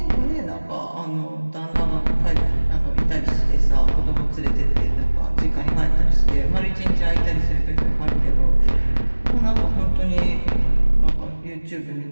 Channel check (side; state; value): both; inverted; correlation -1.00